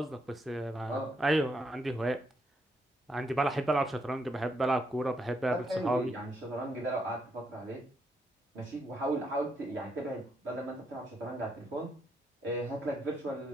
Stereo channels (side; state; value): both; normal; correlation 0.78